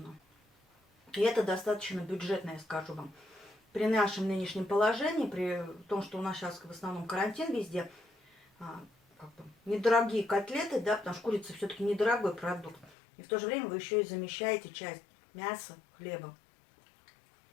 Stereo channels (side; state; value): right; drops out; at 13.0 s